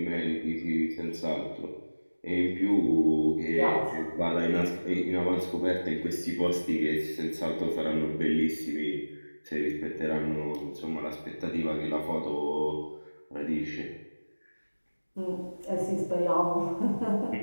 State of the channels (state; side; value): inverted; both; correlation -1.00